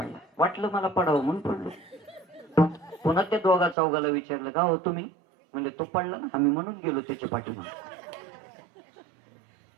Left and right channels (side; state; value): left; drops out; at 3.8 s